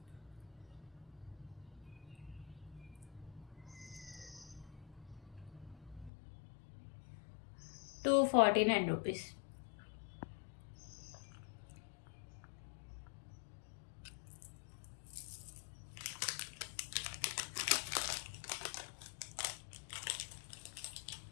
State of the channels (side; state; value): right; drops out; at 6.1 s